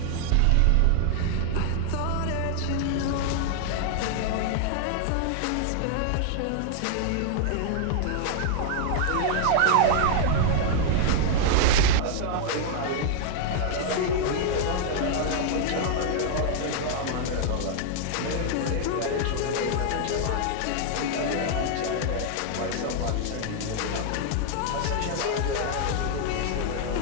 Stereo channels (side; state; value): both; different; correlation 0.00